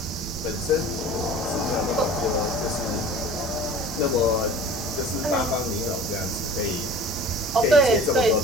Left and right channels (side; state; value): both; normal; correlation 0.42